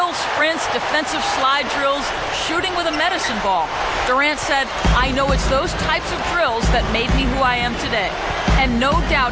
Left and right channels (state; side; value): identical; both; correlation 1.00